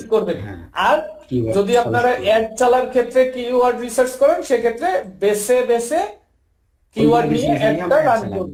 করবেন। হ্যাঁ, আর keyword যদি আপনারা suggest করবেন। অ্যাড চালার ক্ষেত্রে কিওয়ার্ড রিসার্চ করেন, সেক্ষেত্রে বেছে বেছে কিওয়ার্ড নিয়ে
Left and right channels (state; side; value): identical; both; correlation 1.00